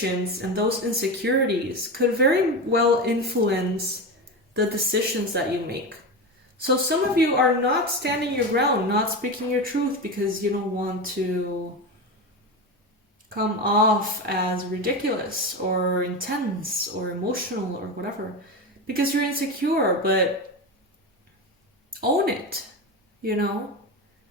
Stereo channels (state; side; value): normal; both; correlation 0.20